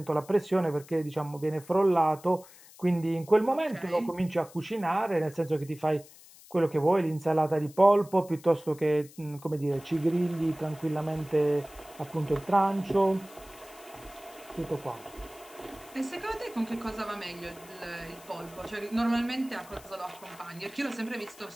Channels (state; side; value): noise; left; hiss, 22 dB below the sound